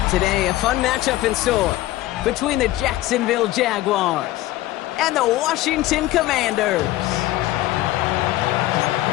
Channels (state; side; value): quieter; right; 16.2 dB